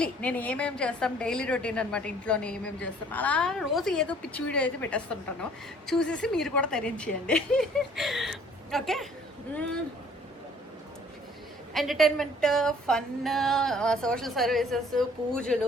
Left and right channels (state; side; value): normal; both; correlation 0.56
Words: నేను ఏమేమి చేస్తాం, డైలీ రొటీన్ అనమాట. ఇంట్లోనే ఏమేమి చేస్తాం అలా రోజు ఏదో పిచ్చి వీడియో అయితే పెట్టేస్తుంటాను. చూసేసి మీరు కూడా తరించేయండి. Okay, entertainment, fun, social services,